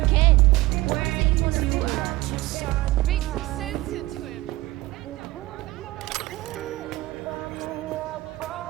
Beat some sense into him. I don't care, just want my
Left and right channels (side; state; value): left; quieter; 18.7 dB